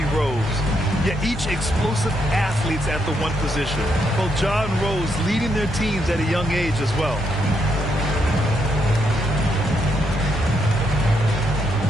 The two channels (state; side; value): normal; both; correlation 0.77